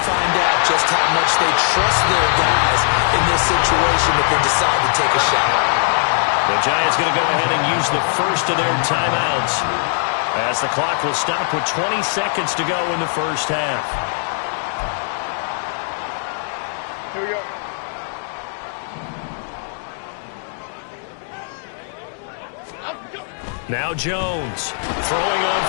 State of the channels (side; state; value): right; silent; digital silence